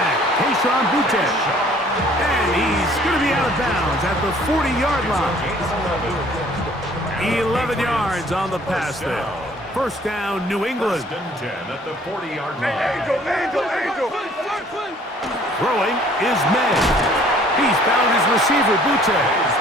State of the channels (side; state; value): both; normal; correlation 0.57